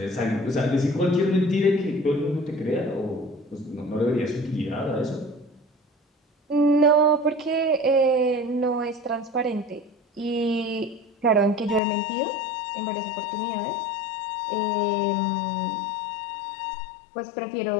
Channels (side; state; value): right; drops out; at 11.8 s